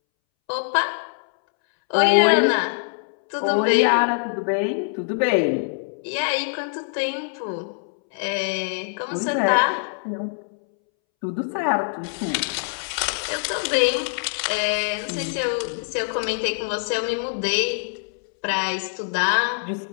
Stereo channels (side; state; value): right; silent; 63 dB below the other